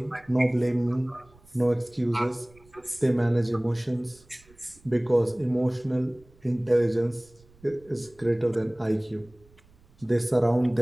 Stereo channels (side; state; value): right; noise; rumble, 28 dB below the sound